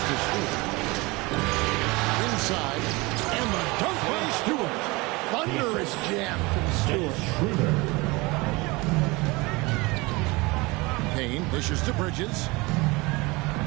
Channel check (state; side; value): quieter; left; 24.1 dB